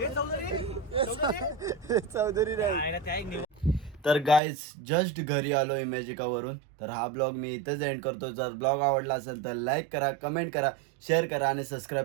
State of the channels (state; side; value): drops out; left; at 4.4 s